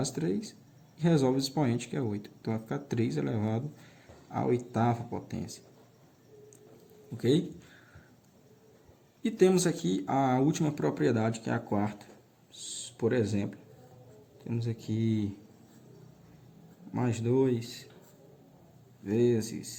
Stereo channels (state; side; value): identical; both; correlation 1.00